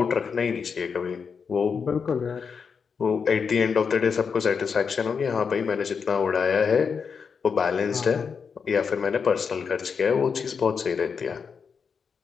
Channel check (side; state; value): right; quieter; 6.0 dB